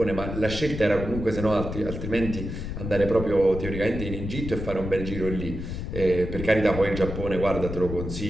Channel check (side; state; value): left; noise; rumble, 6 dB below the sound